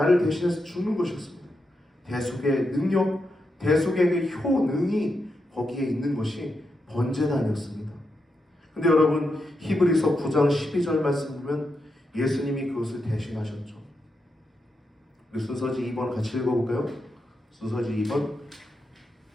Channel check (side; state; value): both; normal; correlation 0.85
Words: 대신해서 죽는 것이었습니다. 대속의 능력, 대속의 그 효능이 거기에 있는 것이 번제단이었습니다. 근데 여러분, 히브리서 9장 12절 말씀 보면 예수님이 그것을 대신하셨죠. 우리 순서지 2번 같이 읽어볼까요? 순서지 2번